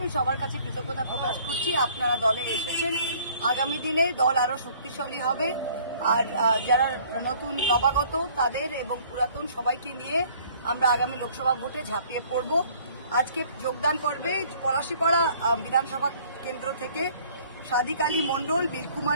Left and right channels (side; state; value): both; inverted; correlation -0.56